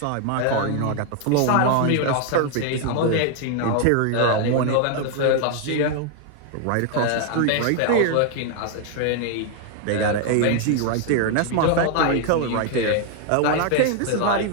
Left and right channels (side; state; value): both; different; correlation 0.00